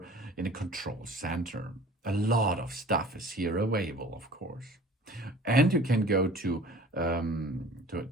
in a control center. A lot of stuff is here available, of course. And you can go to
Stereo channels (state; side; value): normal; both; correlation 0.46